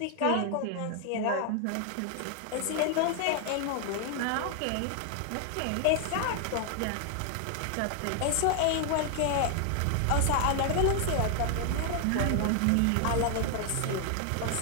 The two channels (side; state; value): both; different; correlation 0.00